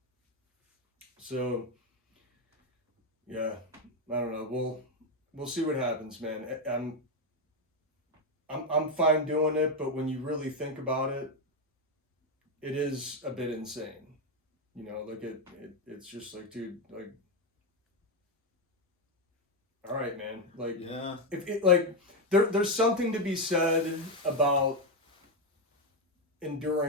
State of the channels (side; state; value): both; normal; correlation 0.06